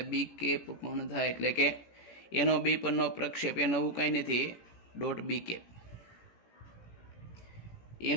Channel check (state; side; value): late; right; 18 ms